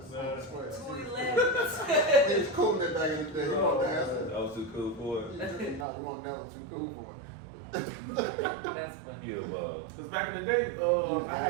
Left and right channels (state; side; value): drops out; left; at 5.9 s